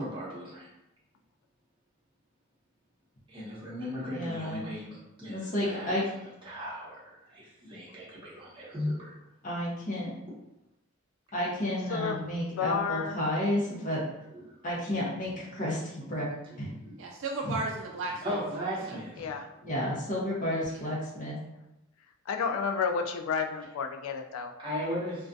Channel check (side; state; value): both; normal; correlation 0.24